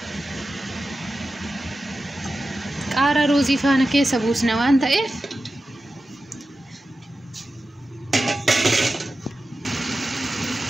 Qaara ruuzii faana keessa buusna waan ta'eef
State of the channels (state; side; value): normal; both; correlation 0.93